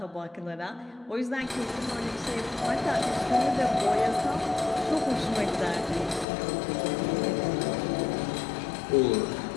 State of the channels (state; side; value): drops out; right; at 6.2 s